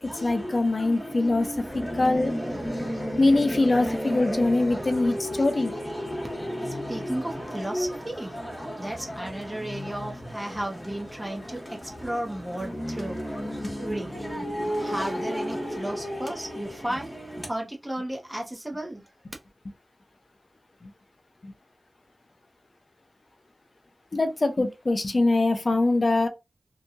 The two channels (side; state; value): both; normal; correlation 0.98